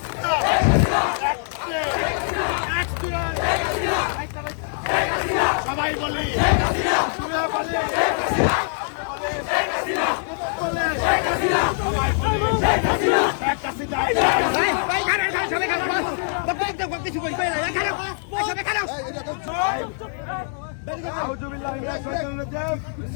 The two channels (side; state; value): right; silent; 63 dB below the other